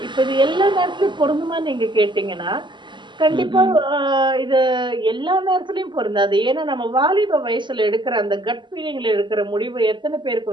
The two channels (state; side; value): late; left; 0.22 ms